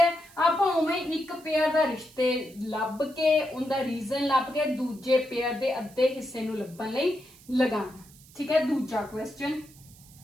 आपां उवें एक पेयर दा रिश्ते लभ के, उनदा रीजन लभ के दूजे पेयर दे अद्धे हिस्से नूं लभण लई लगाना, ठीक है। दूजा question,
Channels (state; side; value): noise; right; hiss, 24 dB below the sound